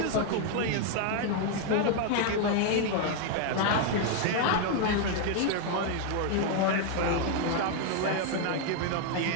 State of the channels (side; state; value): both; different; correlation 0.00